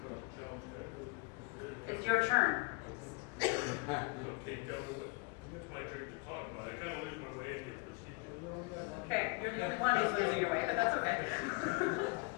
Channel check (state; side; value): quieter; right; 32.1 dB